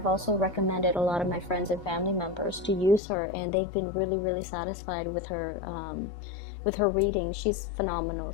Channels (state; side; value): drops out; right; at 3.0 s